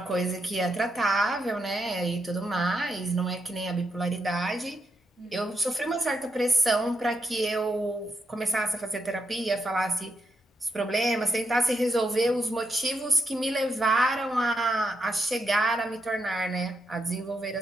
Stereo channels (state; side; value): normal; both; correlation 0.81